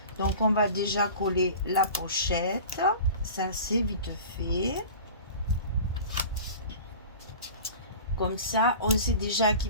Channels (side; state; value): both; inverted; correlation -0.38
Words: Donc on va déjà coller la pochette, ça c'est vite fait. Comme ça on sait déjà